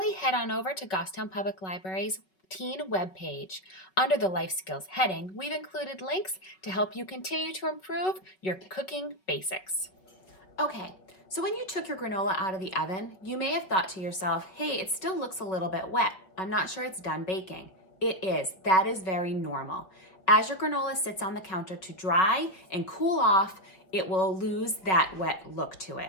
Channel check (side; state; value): right; late; 5.3 ms